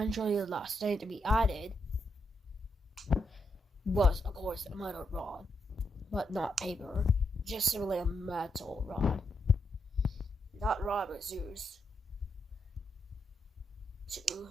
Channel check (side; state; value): both; normal; correlation 0.81